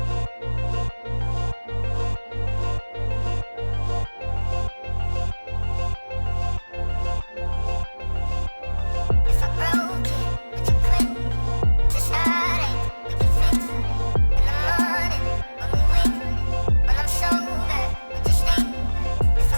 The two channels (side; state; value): both; inverted; correlation -1.00